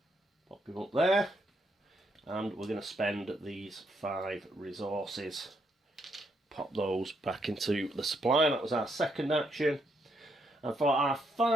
Pop him up there. And we're going to spend these 5 resources. Pop those back into the supply. That was our second action. And for our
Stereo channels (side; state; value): both; normal; correlation 0.76